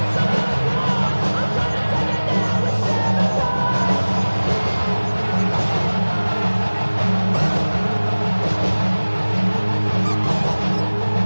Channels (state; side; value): inverted; both; correlation -1.00